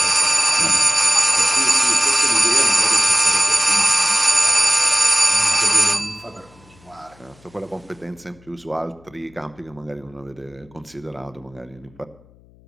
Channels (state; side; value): noise; left; hum, 28 dB below the sound